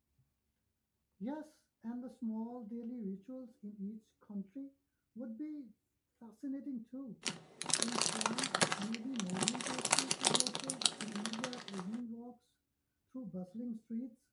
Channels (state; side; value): identical; both; correlation 1.00